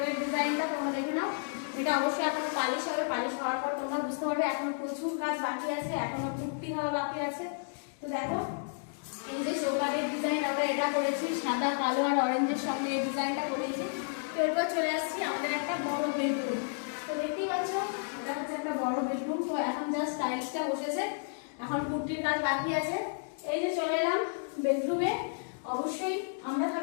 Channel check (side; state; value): right; silent; digital silence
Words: ডিজাইনটা তোমরা দেখে নাও। এটা অবশ্যই এখনো পালিশ হবে, পালিশ হওয়ার পর তোমরা বুঝতে পারবে এখনো প্রচুর কাজ বাকি আছে, এখনো পুট্টি হওয়া বাকি আছে। তো দেখো এই যে চৌকাঠের ডিজাইন আমরা এটা করেছি, সাদা কালো আর অরেঞ্জের সঙ্গে এই ডিজাইনটা করেছি। তো এরপর চলে আসছি আমাদের একটা বড় বেডরুম। তো দেখতেই পাচ্ছ এটা হচ্ছে একটা বড় বেডরুম। তো এখন জাস্ট টাইলসটা বসেছে, এখন পুট্টির কাজ বাকি আছে। এই যে চলে এলাম বেডরুমে। অবশ্যই আমরা